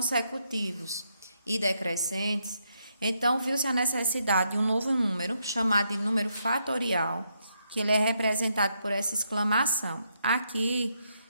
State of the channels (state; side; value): inverted; both; correlation -0.78